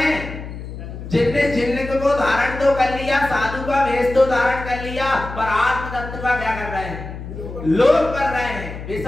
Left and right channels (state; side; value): noise; left; hum, 10 dB below the sound